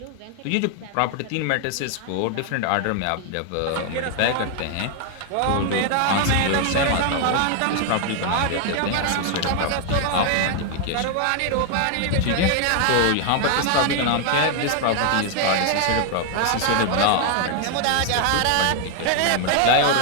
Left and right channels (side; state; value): both; different; correlation 0.00